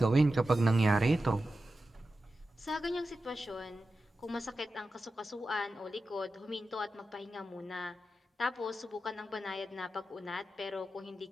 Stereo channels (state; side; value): normal; both; correlation 0.92